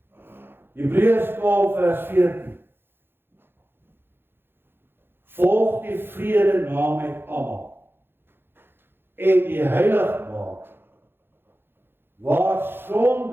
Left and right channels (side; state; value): left; late; 0.10 ms